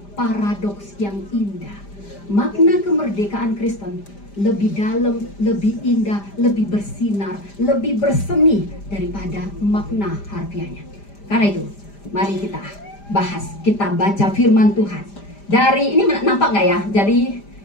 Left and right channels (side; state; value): right; late; 5.0 ms